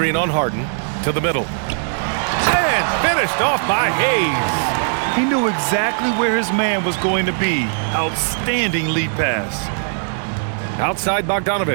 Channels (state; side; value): silent; left; digital silence